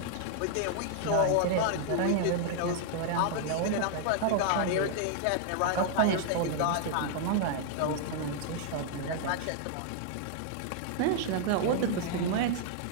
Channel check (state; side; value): different; both; correlation -0.01